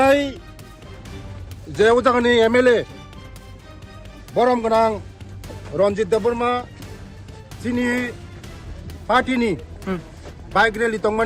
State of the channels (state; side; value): identical; both; correlation 1.00